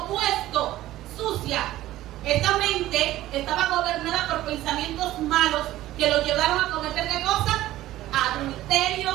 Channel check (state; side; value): quieter; left; 15.1 dB